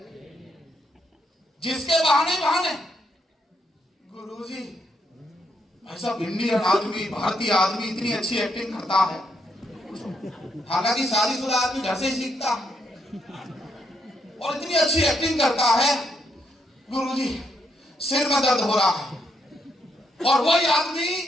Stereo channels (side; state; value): both; normal; correlation 0.77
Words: जिसके बहाने ही बहाने। गुरुजी ऐसा इंडियन आदमी, भारतीय आदमी इतनी अच्छी एक्टिंग करता है, हालांकि शादीशुदा आदमी घर से ही सीखता है, और इतनी अच्छी एक्टिंग करता है। गुरुजी सिर में दर्द हो रहा है, और वही